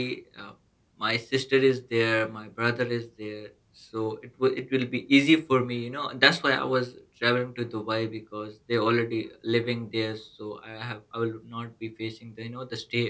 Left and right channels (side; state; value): both; identical; correlation 1.00